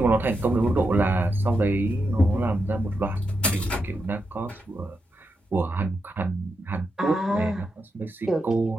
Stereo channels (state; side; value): normal; both; correlation 0.85